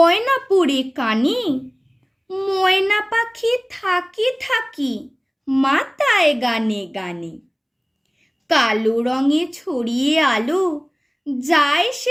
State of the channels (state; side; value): identical; both; correlation 1.00